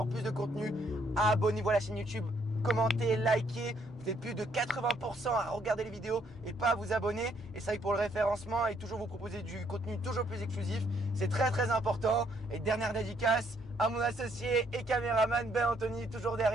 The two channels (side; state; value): both; normal; correlation 0.69